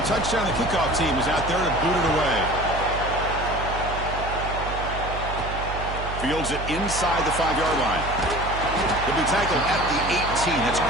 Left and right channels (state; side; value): noise; right; hum, 7 dB below the sound